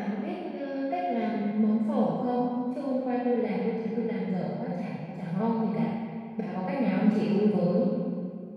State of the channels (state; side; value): identical; both; correlation 1.00